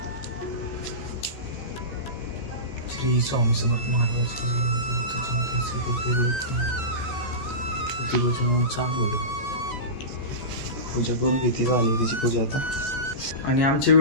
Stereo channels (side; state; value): right; late; 14 ms